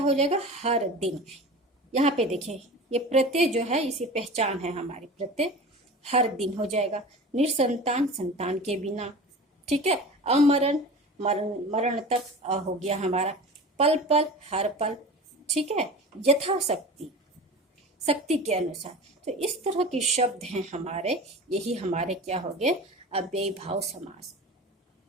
जाएगा, हर दिन। यहाँ पे देखिए ये प्रत्यय जो है, इसी पहचान है हमारी, प्रत्यय हर दिन हो जाएगा। निसंतान, संतान के बिना। ठीक है, अमरण, मरण तक हो गया हमारा। पल पल, हर पल। ठीक है, यथाशक्ति, शक्ति के अनुसार। तो इस तरह के शब्द हैं हमारे, यही हमारे क्या हो गए, अव्यय भाव समास।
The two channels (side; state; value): both; normal; correlation 0.35